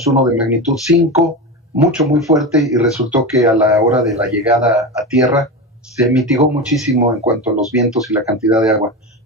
uno de magnitud 5, muy fuerte, y resultó que a la hora de la llegada a tierra se mitigó muchísimo en cuanto a los vientos y la cantidad de agua.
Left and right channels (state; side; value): normal; both; correlation 0.21